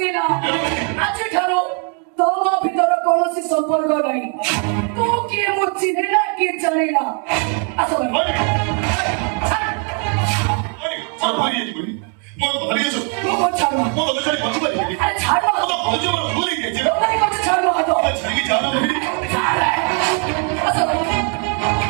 ଆଜିଠାରୁ ତମ ଭିତର କୌଣସି ସମ୍ପର୍କ ନାହିଁ। ତୁ କିଏ ମୁଁ ଚିହ୍ନିଲା କିଏ ଜାଣିଲା ଆସ মন ভারিয়ে দিবনি মন ভারিয়েছ ମୁଁ ଛାଡ মন তো ছাড়ি বাঁচতে পারি আরে ছাড় মন তো ভুলে গেছে ছাড় হাত ছাড়ি কি জানা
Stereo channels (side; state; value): left; quieter; 35.1 dB